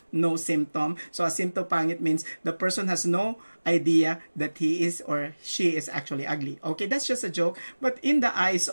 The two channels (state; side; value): inverted; both; correlation -1.00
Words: no symptom. So asymptopangit means the person has no idea that he is or she is actually ugly. Okay, that's just a joke. But in the eyes